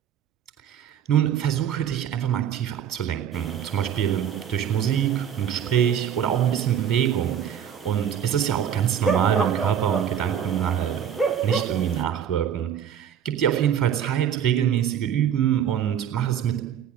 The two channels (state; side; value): quieter; left; 9.1 dB